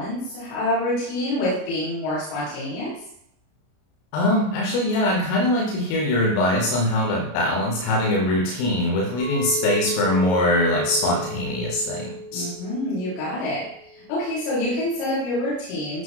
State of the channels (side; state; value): right; late; 33 ms